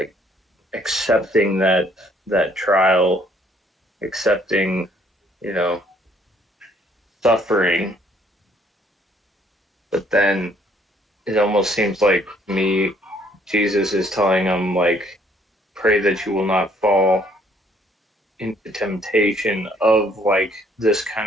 accepting that trial, accepting, you know, suffering. But then it almost seems like Jesus is telling him like, pray that you will not fall into temptation of like this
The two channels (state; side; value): normal; both; correlation 0.64